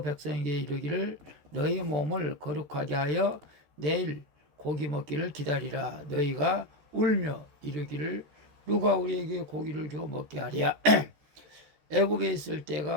백성에게 이르기를 너희 몸을 거룩하게 하여 내일 고기 먹기를 기다리라. 너희가 울며 이르기를 누가 우리에게 고기를 줘 먹게 하랴. 애굽에 있을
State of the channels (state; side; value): late; left; 13 ms